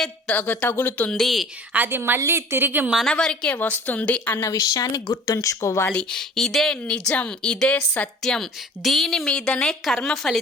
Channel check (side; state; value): both; normal; correlation 0.46